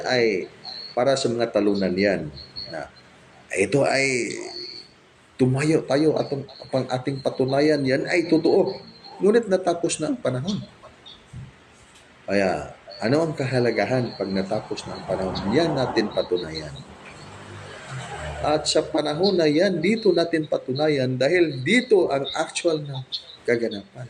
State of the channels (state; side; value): identical; both; correlation 1.00